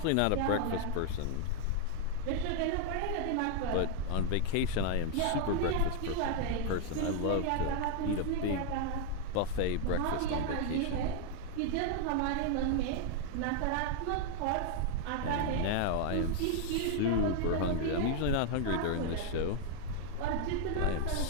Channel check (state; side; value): different; both; correlation 0.00